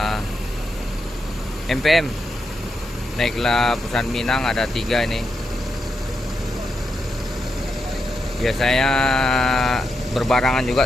MPM naiklah Perusahaan Minang, ada 3 ini. Biasanya berbarangan juga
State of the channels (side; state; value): both; normal; correlation 0.84